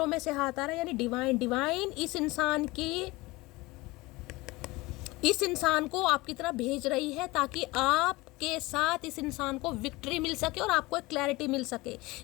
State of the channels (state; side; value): quieter; right; 21.7 dB